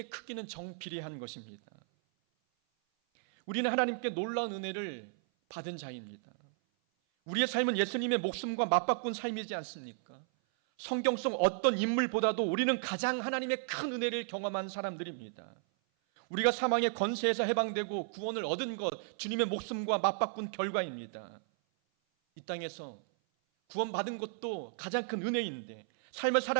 크기는 정비례한 것입니다. 우리는 하나님께 놀라운 은혜를 받은 자입니다. 우리의 삶은 예수님의 목숨과 맞바꾼 삶이지 않습니까? 성경 속 어떤 인물보다도 우리는 가장 하나님의 큰 은혜를 경험한 사람들입니다. 우리가 사망의 권세에서 해방되고 구원을 얻은 것, 주님의 목숨과 맞바꾼 결과입니다. 이 땅에서 구원받은 것도 가장 큰 은혜인데, 삶을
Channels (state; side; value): silent; left; 55 dB below the other